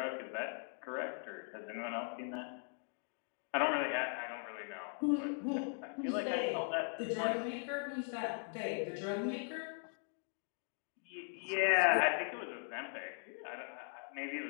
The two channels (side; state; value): right; silent; 51 dB below the other